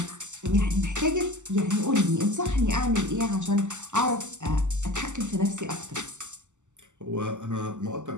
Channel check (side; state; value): left; late; 0.84 ms